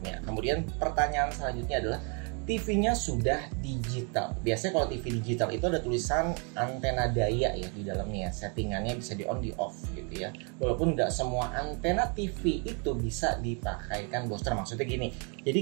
Kemudian pertanyaan selanjutnya adalah TV-nya sudah digital. Biasanya kalau TV digital itu ada tulisan antena daya ya di dalamnya. Settingannya bisa di on, di off gitu ya. Walaupun nggak semua antena TV itu bisa dipakaikan booster. Maksudnya gini, jadi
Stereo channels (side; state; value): left; quieter; 36.1 dB